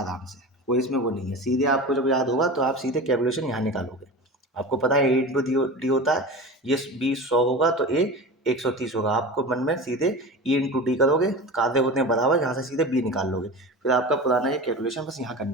से, कोई इसमें वो नहीं है। सीधे आपको जब याद होगा तो आप सीधे कैलकुलेशन यहाँ निकालोगे। आपको पता है ए इंटू डी होता है, ये बी 100 होगा तो ए 130 होगा, आपको मन में सीधे ई इंटू डी करोगे, कार्य होते हैं बराबर, यहाँ से सीधे बी निकाल लोगे, फिर आपका पुराना ये कैलकुलेशन बस यहाँ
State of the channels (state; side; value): normal; both; correlation 0.31